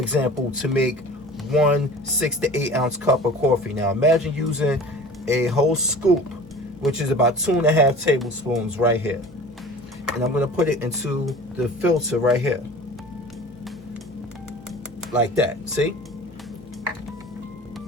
to make 1 6 to 8 ounce cup of coffee. Now imagine using a whole scoop, which is about 2.5 tablespoons right here. And I'm gonna put it into the filter right here. Like that, see?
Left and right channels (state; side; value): normal; both; correlation 0.41